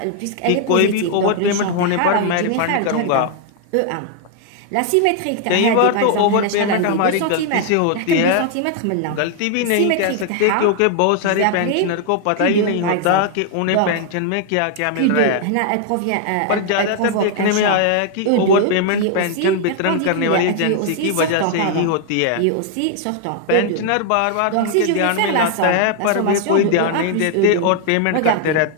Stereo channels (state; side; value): different; both; correlation 0.00